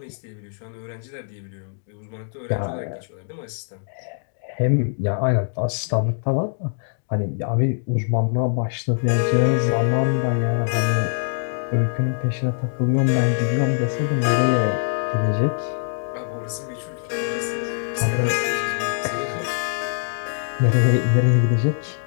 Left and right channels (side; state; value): right; silent; digital silence